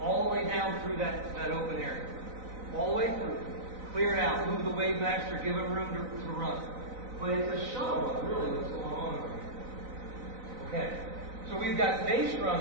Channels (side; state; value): left; late; 4.0 ms